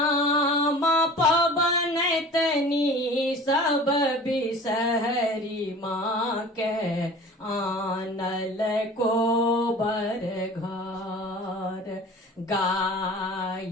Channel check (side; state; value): both; normal; correlation 0.42